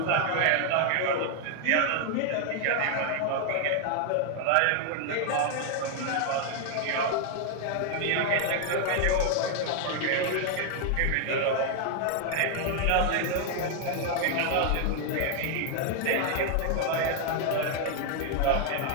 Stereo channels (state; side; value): different; both; correlation 0.00